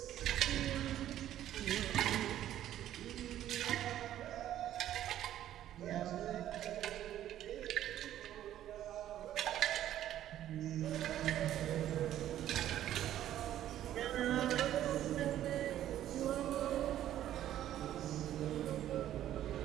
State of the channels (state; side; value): quieter; left; 12.1 dB